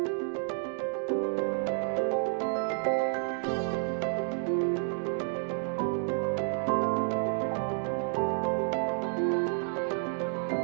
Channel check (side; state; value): left; silent; 58 dB below the other